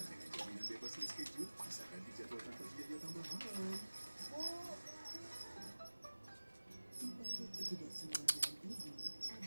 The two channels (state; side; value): inverted; both; correlation -1.00